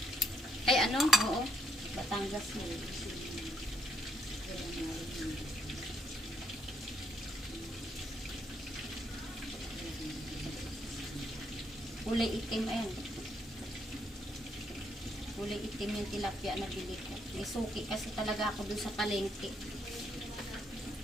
Ay ano? Oo. Batangas mo. Kulay itim, ayan. Kulay itim yung tilapia na bili ko. May suki kasi talaga ako dun sa palengke.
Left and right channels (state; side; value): normal; both; correlation 0.73